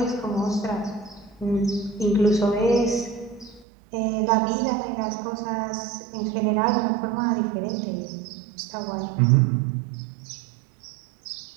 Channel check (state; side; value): drops out; left; at 3.7 s